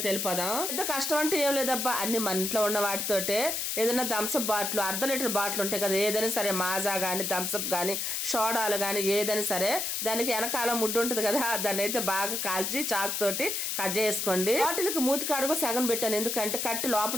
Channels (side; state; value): left; noise; hiss, 1 dB below the sound